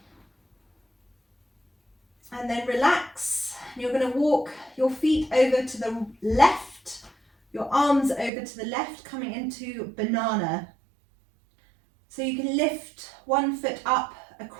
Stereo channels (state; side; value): drops out; left; at 8.3 s